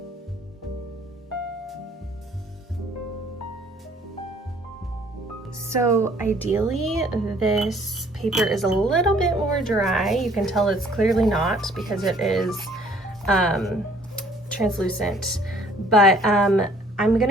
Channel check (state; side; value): normal; both; correlation 0.58